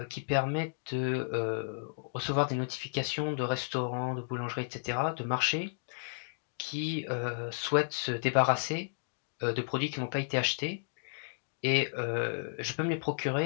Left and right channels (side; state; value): right; silent; digital silence